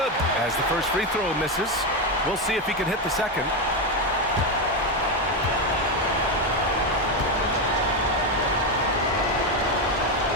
as the first free throw misses. We'll see if he can hit the second.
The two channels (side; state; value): both; normal; correlation 0.10